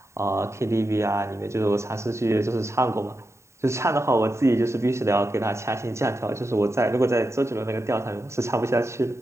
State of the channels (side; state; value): left; late; 0.14 ms